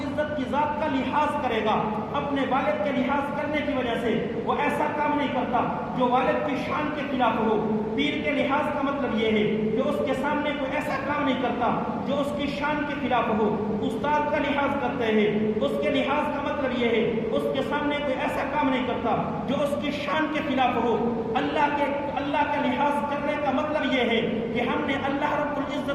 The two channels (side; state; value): both; identical; correlation 1.00